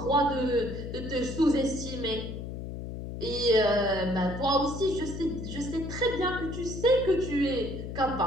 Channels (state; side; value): noise; left; hum, 7 dB below the sound